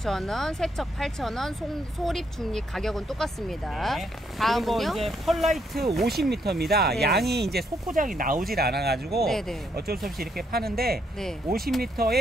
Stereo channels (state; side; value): normal; both; correlation 0.74